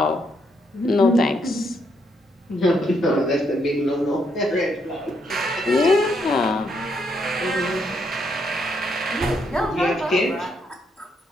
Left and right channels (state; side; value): normal; both; correlation 0.75